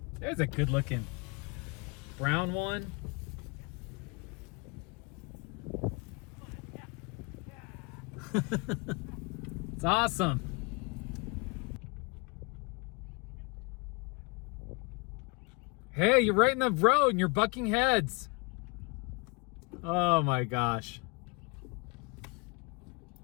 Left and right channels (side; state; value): right; quieter; 29.6 dB